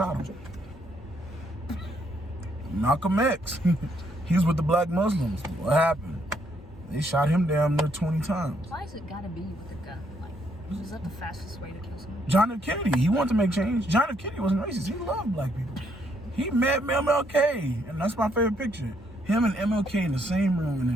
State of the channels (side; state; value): both; normal; correlation 0.72